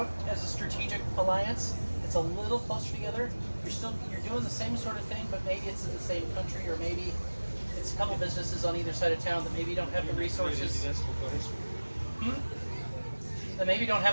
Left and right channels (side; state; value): both; inverted; correlation -1.00